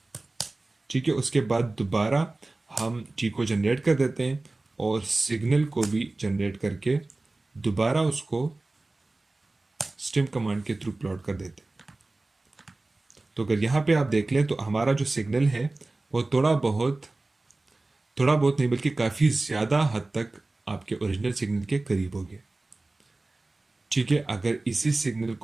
ठीक है। उसके बाद दोबारा हम टी को जनरेट कर देते हैं और सिग्नल को भी जनरेट करके दोबारा उसको स्टेम कमांड के थ्रू प्लॉट कर देते हैं। तो अगर यहाँ पे आप देख लें तो हमारा जो सिग्नल है वो थोड़ा बहुत नहीं बल्कि काफ़ी ज़्यादा हद तक आपके ओरिजिनल सिग्नल के करीब हो गया, ठीक है। अगर इसी सिग्नल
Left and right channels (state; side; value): quieter; left; 3.1 dB